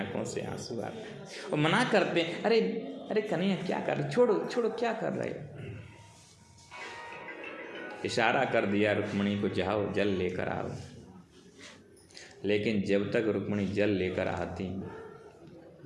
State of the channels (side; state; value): both; identical; correlation 1.00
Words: से आंसू आते और मना करते, अरे अरे कन्हैया क्या कर रहे, छोड़ो छोड़ो, क्या कर रहे। इशारा कर दिया रुक्मणी को, जाओ जल लेकर आओ। लेकिन जब तक रुक्मणी जल लेकर आती,